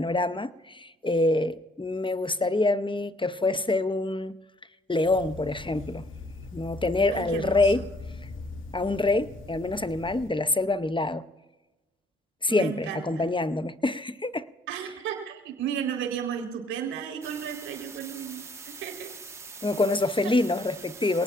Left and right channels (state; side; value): normal; both; correlation 0.63